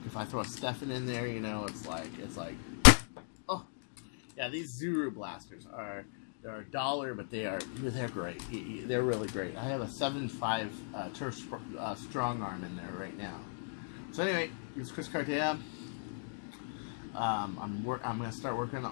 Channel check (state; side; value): silent; right; digital silence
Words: if I throw a Stefan in there, you know, it's like, oh, yeah. These Zuru blasters they're $1, but they're great. They're really great. I have a 7.5 Turf Strong Arm in there right now. So anyway, here's Chris Cartea. I'm going to start working